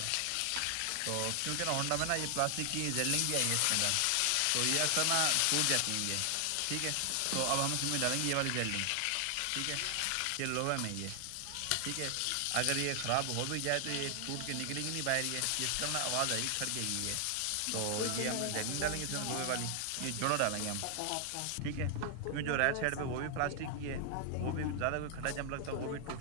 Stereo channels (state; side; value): different; both; correlation 0.00